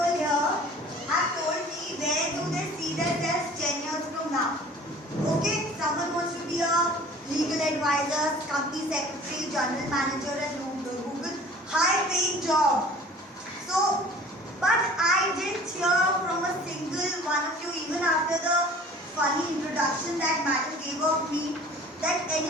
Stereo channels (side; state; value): both; normal; correlation 0.46